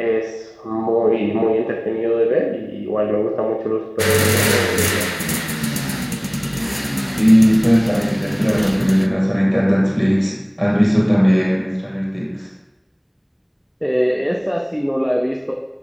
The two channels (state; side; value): identical; both; correlation 1.00